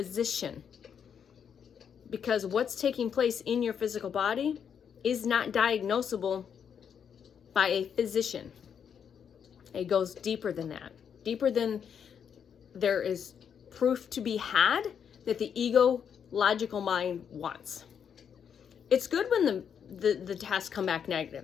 Because what's taking place in your physical body is not diagnosable by a physician. It goes deeper than that. Deeper than there is proof to be had that the ego logical mind wants. It's good when the tests come back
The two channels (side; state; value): right; quieter; 7.7 dB